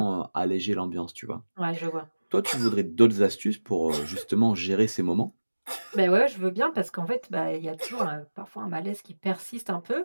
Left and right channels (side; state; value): both; inverted; correlation -1.00